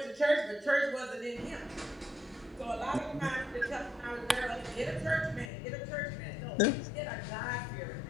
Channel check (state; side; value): drops out; right; at 5.5 s